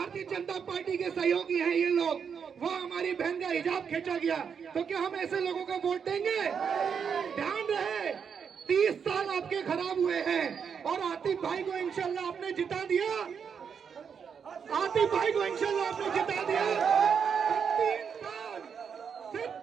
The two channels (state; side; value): quieter; left; 6.8 dB